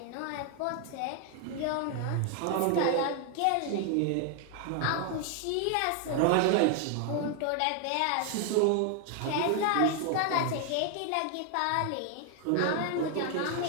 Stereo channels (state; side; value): different; both; correlation 0.00